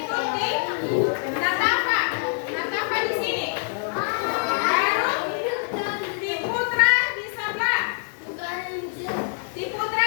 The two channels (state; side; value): silent; right; digital silence